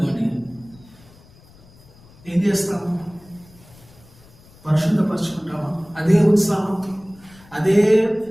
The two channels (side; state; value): left; noise; rumble, 25 dB below the sound